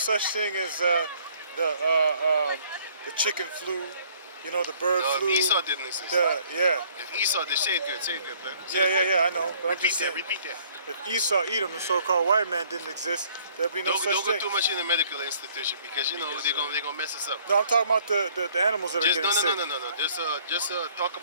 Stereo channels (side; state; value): both; inverted; correlation -0.59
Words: thing as the chicken flu, you know, the bird No, flu. if Esau didn't exist. If Esau did, say it good, man. Yeah, I know. But I'm Repeat just that, saying, repeat that. if Esau, Edom, the so-called white man didn't exist, there'd be no Don't such go thing. too much in the medical institution because you know they're gonna mess us up. No, I'm talking about the animals that are Just getting sick. no. Just talk